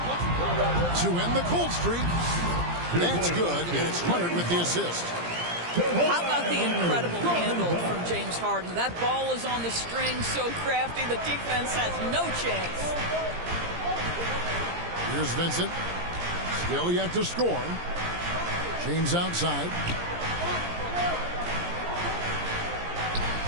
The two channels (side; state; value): left; late; 17 ms